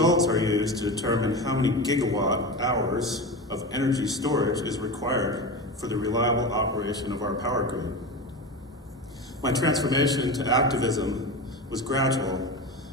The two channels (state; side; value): normal; both; correlation 0.25